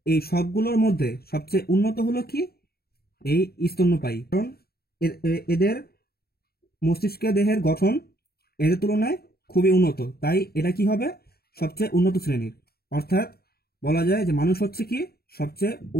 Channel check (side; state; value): right; late; 0.45 ms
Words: এই সবগুলোর মধ্যে সবচেয়ে উন্নত হলো কি এই স্তন্যপায়ী, কারণ এদের মস্তিষ্কের দেহের গঠন এদের তুলনায় খুবই উন্নত, তাই এটা কি হবে সবচেয়ে উন্নত শ্রেণীর। অর্থাৎ বলা যায় যে মানুষ হচ্ছে কি সবচেয়ে